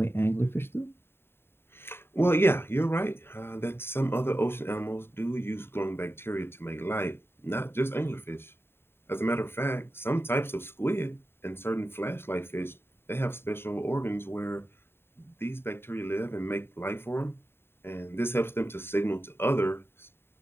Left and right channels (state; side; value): late; right; 0.11 ms